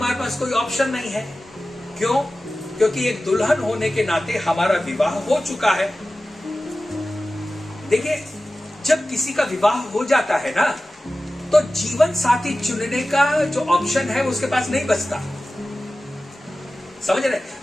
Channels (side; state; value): both; normal; correlation 0.95